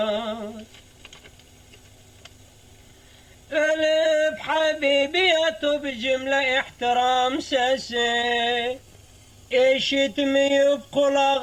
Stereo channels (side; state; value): both; identical; correlation 1.00